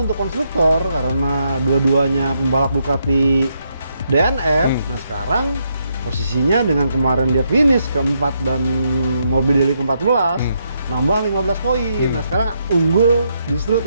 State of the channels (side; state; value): both; inverted; correlation -0.78